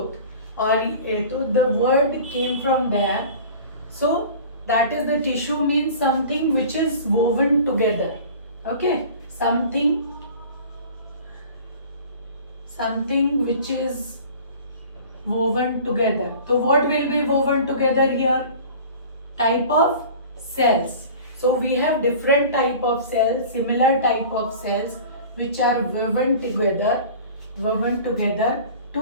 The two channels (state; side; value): inverted; both; correlation -0.42